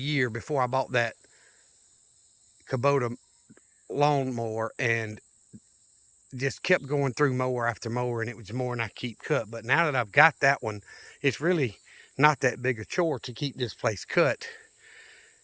before I bought that Kubota lawnmower and just kept going through mower after mower, and it was more than I keep cut. But now that I've got that one, it's really not that big a chore to keep this place cut,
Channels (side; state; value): both; identical; correlation 1.00